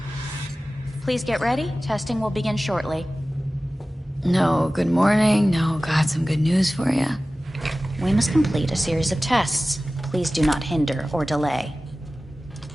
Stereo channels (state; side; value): normal; both; correlation 0.96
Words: Please get ready. Testing will begin shortly. No, good morning. No, got some good news for you. We must complete a series of tests. Please do not hinder or delay.